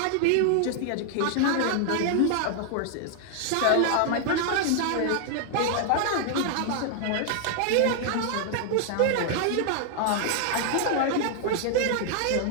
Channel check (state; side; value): different; both; correlation 0.00